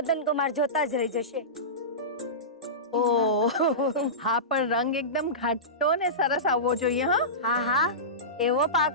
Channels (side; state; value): both; normal; correlation -0.20